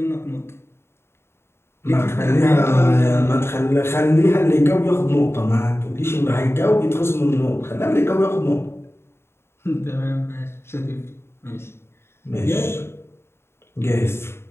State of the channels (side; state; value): right; late; 0.12 ms